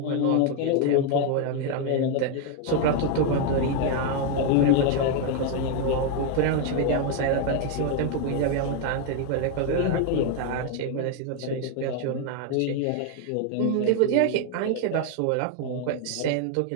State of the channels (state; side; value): different; both; correlation 0.01